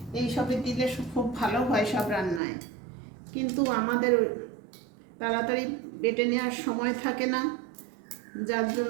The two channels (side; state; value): left; drops out; at 2.4 s